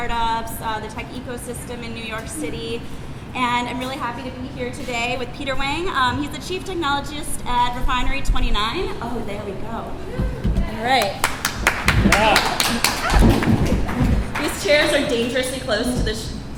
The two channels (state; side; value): identical; both; correlation 1.00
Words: the tech ecosystem in New York City. And I'm really happy to be here today with Peter Wang. He's the Chief Technologist at Refinery 29. Oh, there we go. All right. Yeah. These chairs are dangerously close to the